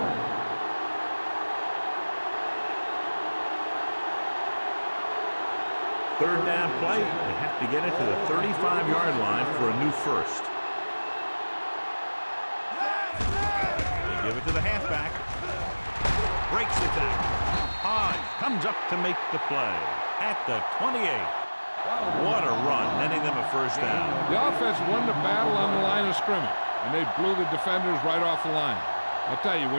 third down play. They have to get it to the 35-yard line for a new first. They give it to the halfback. Breaks the tackle. Hodge comes up to make the play at the 28. What a run, netting them a first down. The offense won the battle on the line of scrimmage, and they blew the defenders right off the line. I'll tell you,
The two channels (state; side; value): inverted; both; correlation -1.00